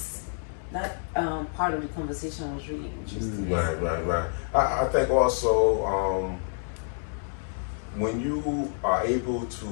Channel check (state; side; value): silent; right; digital silence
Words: that part of the conversation was really interesting. Right. I think also when you are able